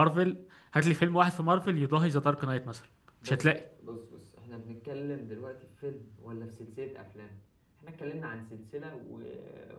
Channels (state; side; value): identical; both; correlation 1.00